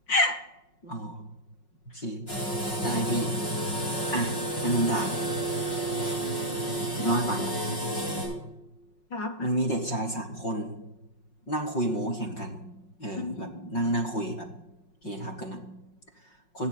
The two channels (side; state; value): right; late; 5.5 ms